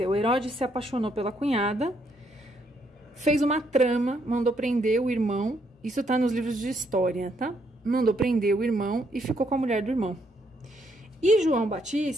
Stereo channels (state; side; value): normal; both; correlation 0.73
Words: Herodes se apaixonou pela cunhada, fez uma trama, mandou prender o irmão, isso tá nos livros de história, tá? Mandou prender o irmão e ficou com a mulher do irmão. E João